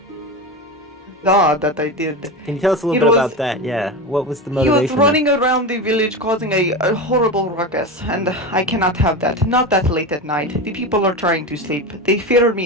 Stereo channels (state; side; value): normal; both; correlation 0.22